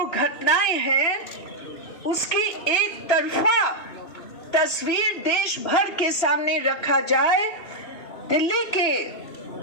घटनाएं हैं उसकी एक तरफा तस्वीर देश भर के सामने रखा जाए। दिल्ली के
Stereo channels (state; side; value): late; right; 3.0 ms